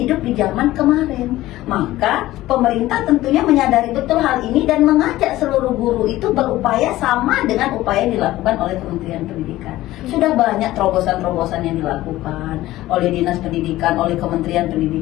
di zaman kemarin. Maka pemerintah tentunya menyadari betul hal ini dan mengajak seluruh guru itu berupaya sama dengan upaya yang dilakukan oleh Kementerian Pendidikan. Sudah banyak terobosan-terobosan yang dilakukan oleh Dinas Pendidikan, oleh Kementerian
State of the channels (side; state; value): right; quieter; 16.2 dB